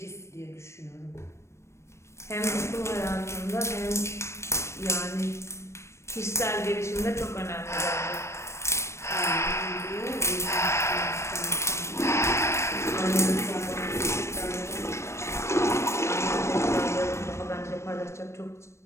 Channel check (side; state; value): right; late; 0.13 ms